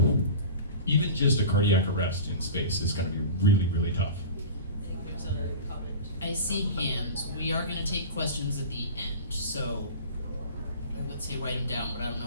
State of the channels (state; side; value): inverted; both; correlation -0.34